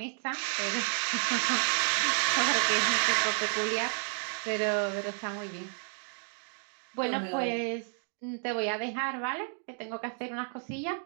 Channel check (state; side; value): silent; left; 57 dB below the other